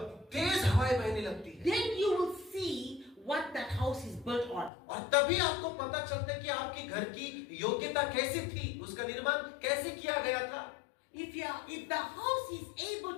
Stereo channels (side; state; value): right; drops out; at 4.7 s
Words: तेज हवाएं बहने लगती है, Then you will see what that house is built on. और तभी आपको पता चलता है कि आपके घर की योग्यता कैसी थी, उसका निर्माण कैसे किया गया था। If the house is